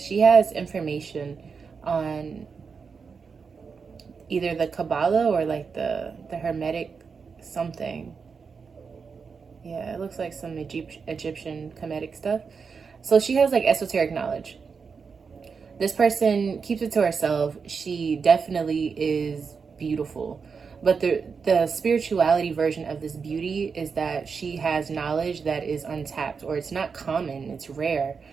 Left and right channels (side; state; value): left; quieter; 5.5 dB